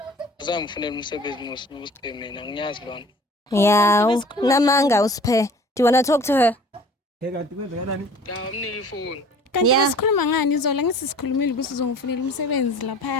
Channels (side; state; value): both; normal; correlation 0.47